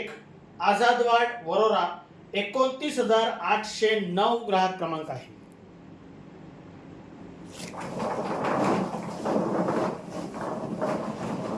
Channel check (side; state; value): both; identical; correlation 1.00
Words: आझादवाड, वरोरा. 29,809 ग्राहक क्रमांक आहे.